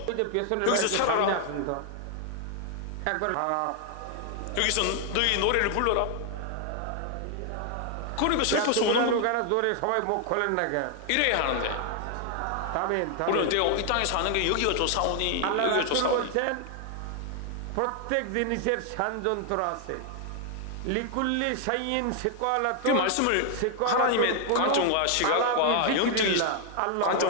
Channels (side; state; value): both; different; correlation 0.00